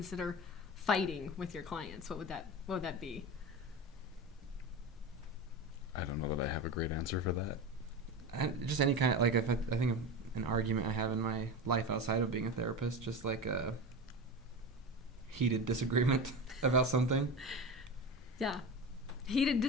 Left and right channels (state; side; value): normal; both; correlation 0.25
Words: fighting with your clients? What would that be? I don't know that I have a great answer for that. Just any kind of, like, if I think of an argument I have in my life outside of being a therapist, just like a heated disagreement about something. Yeah. Heated